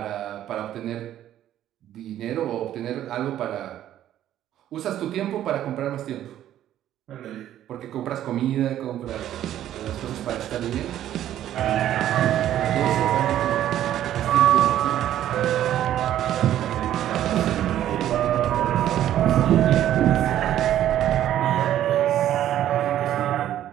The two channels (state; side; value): quieter; left; 11.9 dB